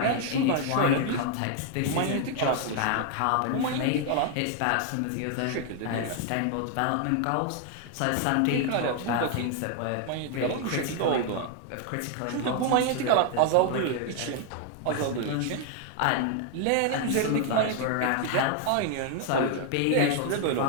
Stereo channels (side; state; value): both; different; correlation 0.00